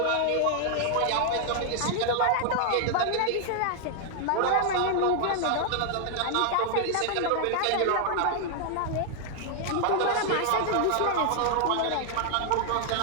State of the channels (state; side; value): different; both; correlation 0.00